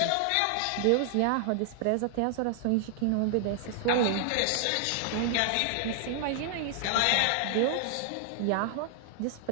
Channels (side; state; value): both; different; correlation 0.00